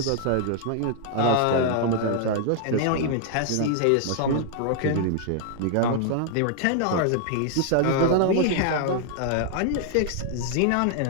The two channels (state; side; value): different; both; correlation 0.00